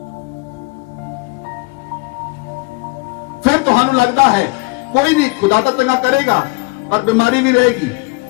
फिर तुहानू लगता है कोई नहीं, खुदा तो चंगा करेगा, और बीमारी भी रहेगी।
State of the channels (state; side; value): quieter; right; 26.9 dB